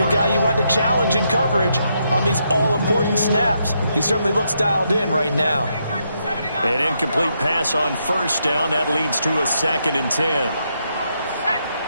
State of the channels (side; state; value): both; inverted; correlation -0.79